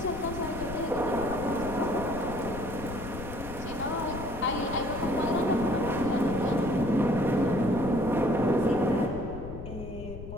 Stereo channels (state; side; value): noise; left; rumble, 10 dB below the sound